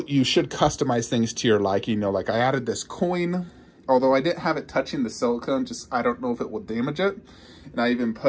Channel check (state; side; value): identical; both; correlation 1.00